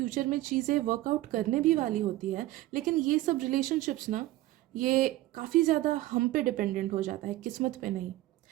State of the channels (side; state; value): left; quieter; 16.8 dB